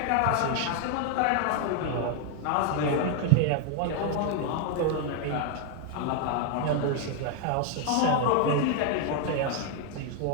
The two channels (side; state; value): both; different; correlation 0.00